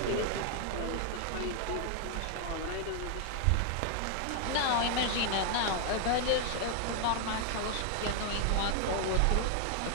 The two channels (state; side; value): different; both; correlation 0.00